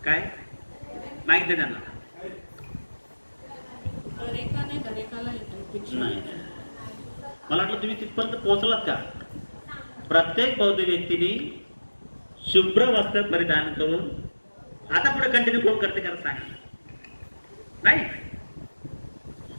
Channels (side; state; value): both; inverted; correlation -1.00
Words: काय माहिती दे त्यांना. नाही, मला वाटलं तुम्ही तिथपर्यंत पोहोचलात का? प्रत्येक बौद्ध व्यक्तीने शुभ्र वस्त्र परिधान करून, आता पुढे कंटिन्यू कोण करते का सांगा. नाही,